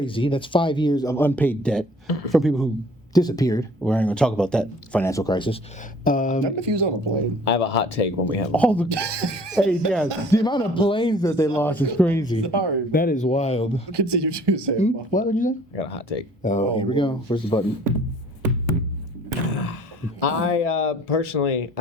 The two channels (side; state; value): both; normal; correlation 0.53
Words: That's 5 years of unpaid debt from people who disappeared. We're not going to talk about that financial crisis. What if he was on a plane? I have a hot take when we have. All the hey, yeah, the amount of planes that they lost is crazy. Sorry. That is wild. Continue to say. What would you say? I got a hot take. Oh, here we go. Where's the button? I personally,